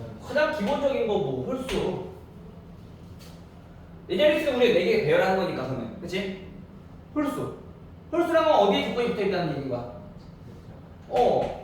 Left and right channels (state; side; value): identical; both; correlation 1.00